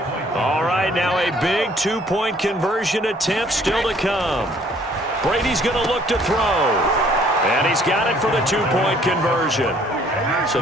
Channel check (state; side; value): normal; both; correlation 0.60